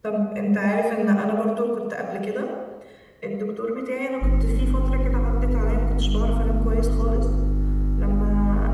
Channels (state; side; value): identical; both; correlation 1.00